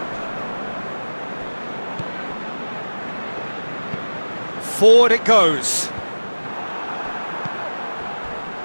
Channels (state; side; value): inverted; both; correlation -1.00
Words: Forward it goes.